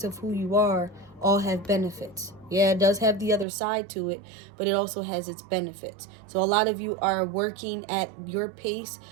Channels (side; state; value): left; drops out; at 3.5 s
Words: of who you are all have benefits. Yeah, it does have the other side to it, but it also has its benefits. So a lot of you are working at your pace,